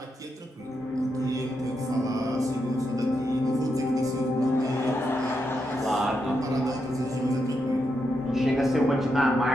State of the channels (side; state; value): both; normal; correlation 0.83